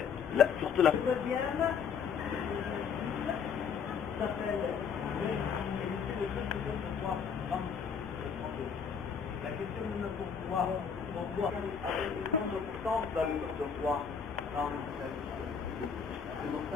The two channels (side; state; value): right; quieter; 6.6 dB